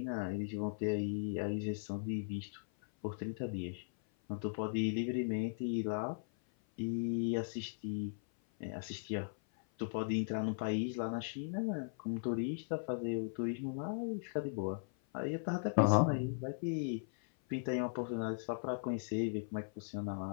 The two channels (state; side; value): silent; right; 52 dB below the other